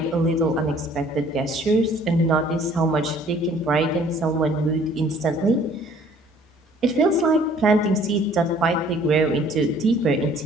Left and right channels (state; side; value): normal; both; correlation 0.56